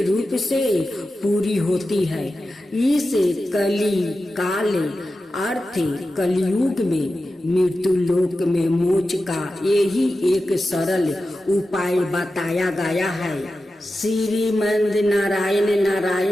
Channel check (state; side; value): normal; both; correlation 0.92